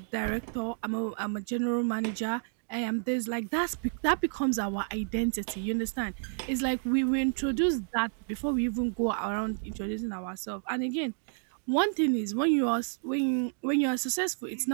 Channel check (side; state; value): left; silent; digital silence